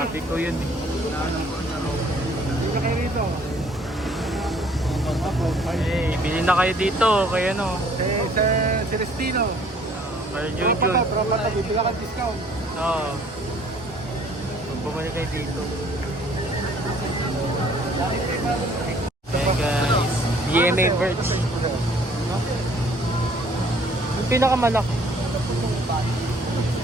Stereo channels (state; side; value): normal; both; correlation 0.58